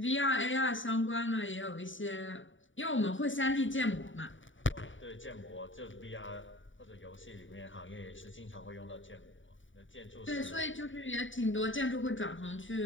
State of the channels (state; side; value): late; right; 0.56 ms